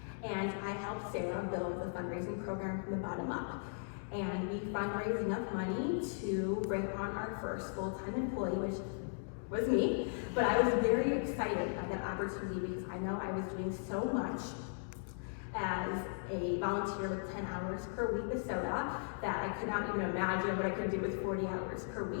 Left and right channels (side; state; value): right; silent; digital silence